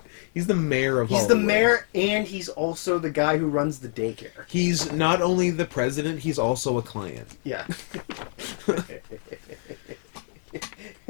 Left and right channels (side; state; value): right; silent; 61 dB below the other